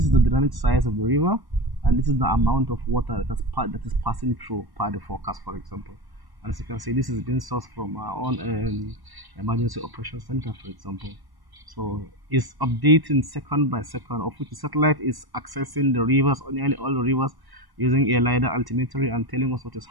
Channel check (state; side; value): late; left; 1.0 ms